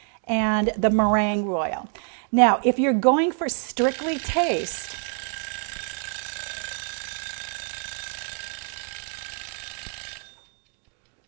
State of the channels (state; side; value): quieter; left; 39.6 dB